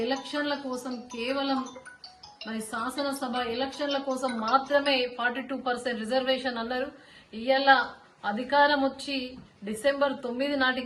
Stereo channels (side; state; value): both; identical; correlation 1.00